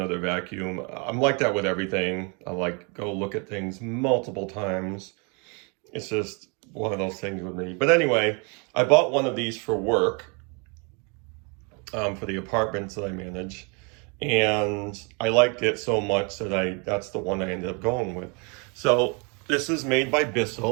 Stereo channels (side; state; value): left; quieter; 33.2 dB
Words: vacuum. I'm like that with everything. I like go look at things multiple times. It's just one of those things with me. But anyway, I bought one of these for work, for the apartments that I manage. And I liked it so much that that's the one I ended up going with. So this is made by